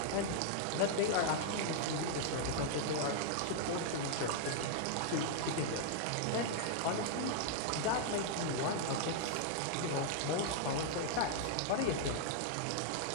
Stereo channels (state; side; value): different; both; correlation -0.01